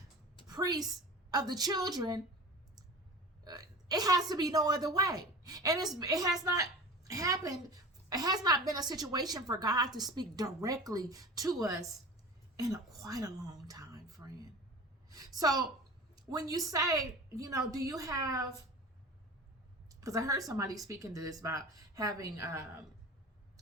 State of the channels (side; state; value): both; normal; correlation 0.35